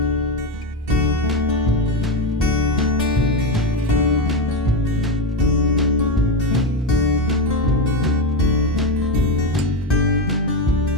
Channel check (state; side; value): normal; both; correlation 0.13